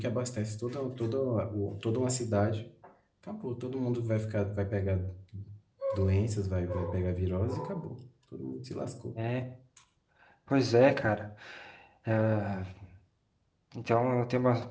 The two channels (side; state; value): both; identical; correlation 1.00